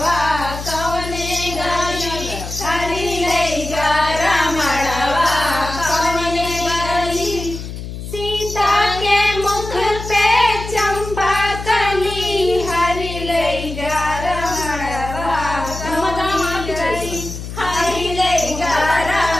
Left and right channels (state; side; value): noise; left; hum, 9 dB below the sound